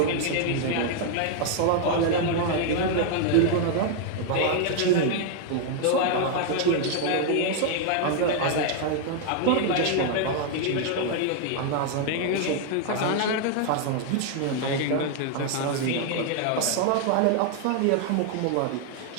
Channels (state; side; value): different; both; correlation 0.00